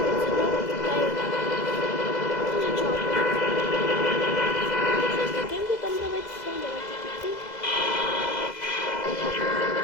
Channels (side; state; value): right; late; 2.0 ms